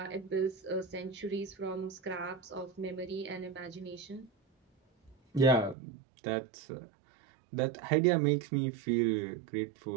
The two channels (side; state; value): left; drops out; at 5.8 s